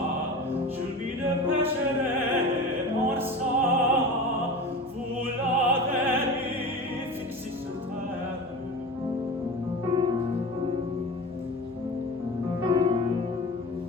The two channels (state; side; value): noise; right; hum, 26 dB below the sound